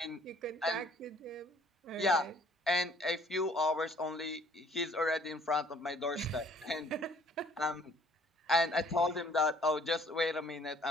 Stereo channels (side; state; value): both; normal; correlation 0.59